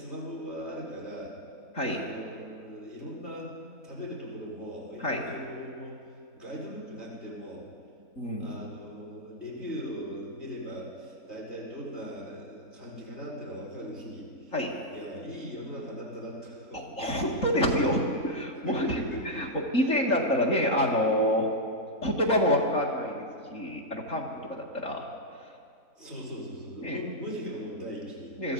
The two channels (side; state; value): right; late; 3.8 ms